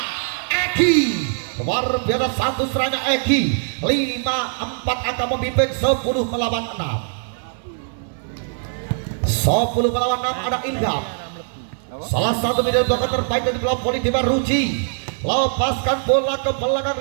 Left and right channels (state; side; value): silent; left; 65 dB below the other